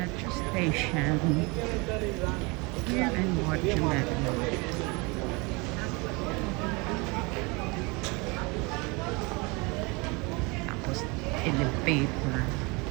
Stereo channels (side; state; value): left; quieter; 27.5 dB